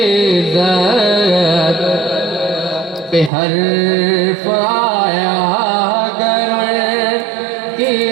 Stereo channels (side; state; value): left; drops out; at 3.3 s